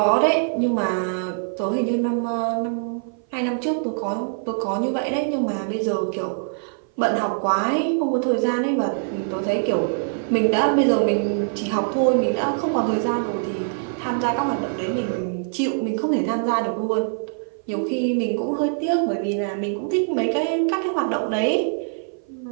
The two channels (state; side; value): silent; left; 57 dB below the other